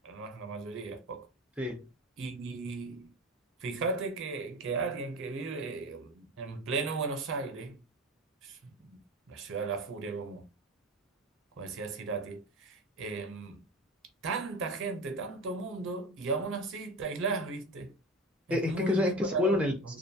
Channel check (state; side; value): normal; both; correlation 0.30